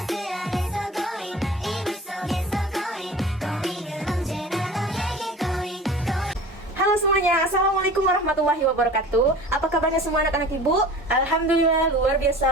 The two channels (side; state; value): both; normal; correlation 0.40